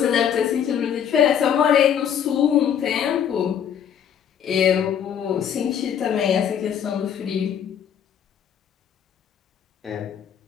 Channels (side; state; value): right; quieter; 8.7 dB